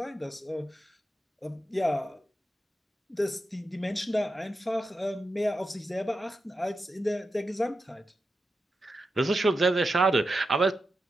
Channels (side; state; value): both; normal; correlation 0.89